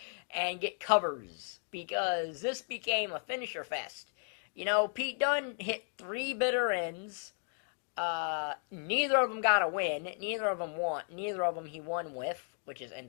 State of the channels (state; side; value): silent; right; 55 dB below the other